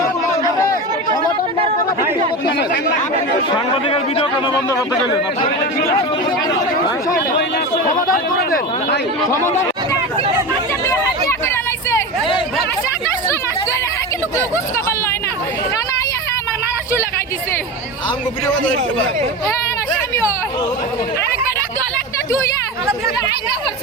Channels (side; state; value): both; normal; correlation 0.25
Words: সাংবাদিকের ভিডিও কেন বন্ধ করতে গেলেন?